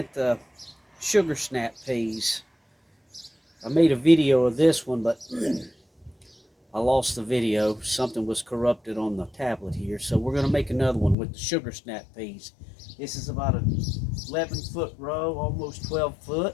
the sugar snap peas. I made a video of this one, but I lost the video. Something was corrupted on the tablet here. So we're going to make another one with the sugar snap peas. This is about an 11-foot row, almost 12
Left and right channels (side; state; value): right; drops out; at 11.2 s